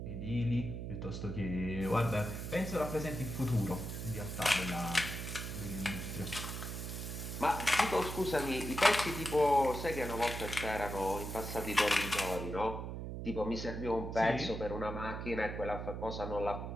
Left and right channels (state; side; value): noise; right; hum, 6 dB below the sound